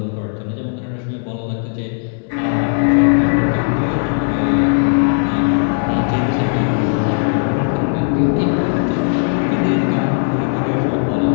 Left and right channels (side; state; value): right; silent; 68 dB below the other